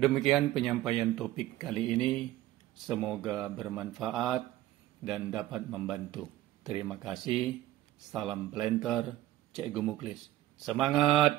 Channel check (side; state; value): left; quieter; 14.8 dB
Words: penyampaian topik kali ini, semoga bermanfaat dan dapat membantu. Terima kasih, salam planter, Cikgu Muklis. Semangat